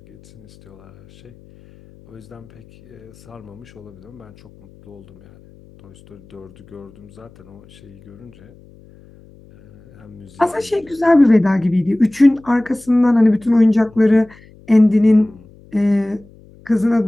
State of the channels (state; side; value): noise; left; hum, 25 dB below the sound